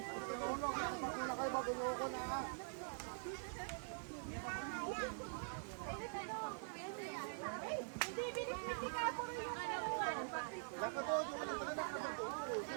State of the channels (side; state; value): left; silent; digital silence